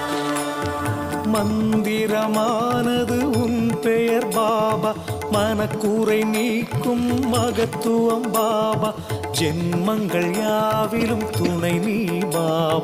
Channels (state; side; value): identical; both; correlation 1.00